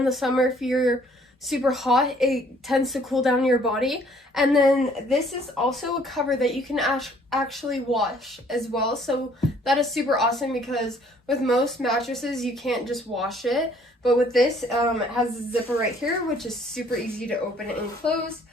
the summer if you're super hot, it tends to cool down your body. And then this is also a cover that you can actually wash as well, so that is super awesome because with most mattresses you can't just wash it, but with this it has a zipper right here which is super easy to open and close,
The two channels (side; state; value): both; normal; correlation 0.60